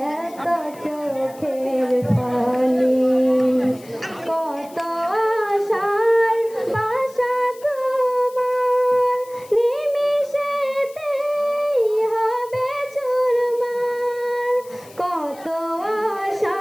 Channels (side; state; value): left; noise; hiss, 23 dB below the sound